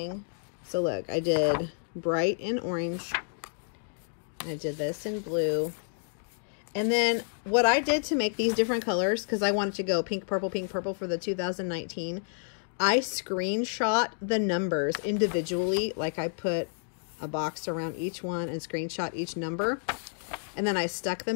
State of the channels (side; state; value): right; silent; digital silence